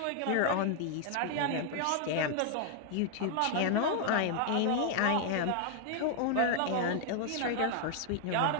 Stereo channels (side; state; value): both; different; correlation 0.00